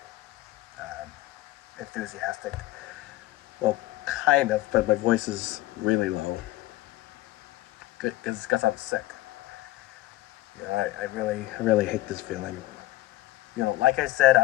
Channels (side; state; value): right; quieter; 16.5 dB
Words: enthusiastic. Well, kind of, but my voice is really low because I'm sick. I really hate this feeling. Like I said,